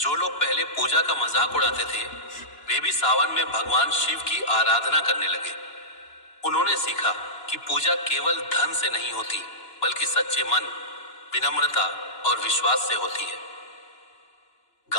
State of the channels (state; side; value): late; right; 2.9 ms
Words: लोग पहले पूजा का मजाक उड़ाते थे, वे भी सावन में भगवान शिव की आराधना करने लगे। उन्होंने सीखा कि पूजा केवल धन से नहीं होती, बल्कि सच्चे मन, विनम्रता और विश्वास से होती है।